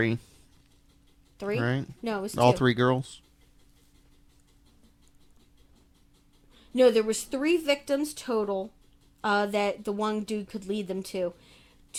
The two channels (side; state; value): both; identical; correlation 1.00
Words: 3? Right? No, it was 2. All 3 girls? No, there was 3 victims total that the one dude could lead them to.